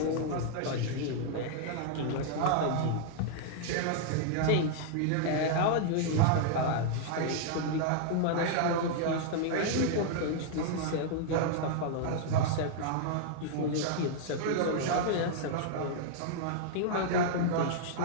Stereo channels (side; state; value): both; different; correlation -0.01